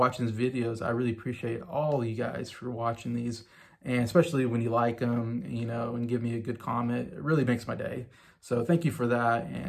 these videos. I really appreciate all you guys for watching these, and especially when you like them, and give me a good comment. It really makes my day. So thank you for that,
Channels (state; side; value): identical; both; correlation 1.00